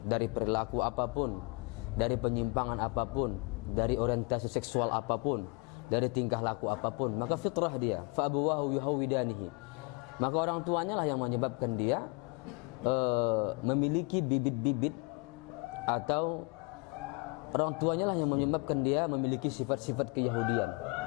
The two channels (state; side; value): quieter; right; 30.2 dB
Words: dari perilaku apapun, dari penyimpangan apapun, dari orientasi seksual apapun, dari tingkah laku apapun, maka fitrah dia. Fa abuwahu yuhawidanihi. Maka orang tuanya lah yang menyebabkan dia memiliki bibit-bibit, atau orang tuanya lah yang menyebabkan dia memiliki sifat-sifat keyahudian.